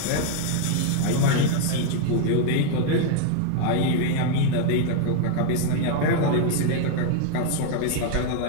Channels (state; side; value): different; both; correlation 0.00